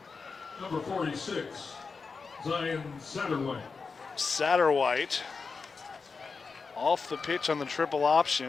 Number 46, Zion Satterwhite. Satterwhite off the pitch on the triple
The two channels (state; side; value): quieter; right; 4.8 dB